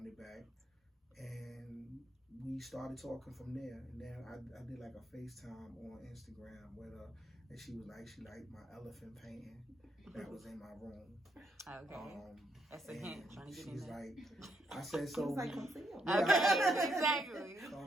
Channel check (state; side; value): normal; both; correlation 0.77